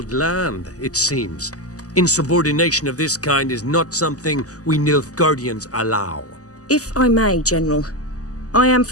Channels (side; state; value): right; late; 0.67 ms